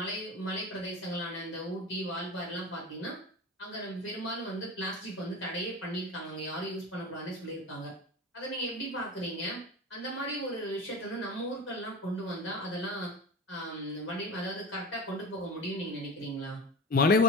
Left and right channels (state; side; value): normal; both; correlation 0.30